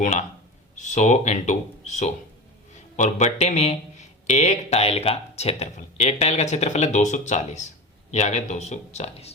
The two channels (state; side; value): normal; both; correlation 0.27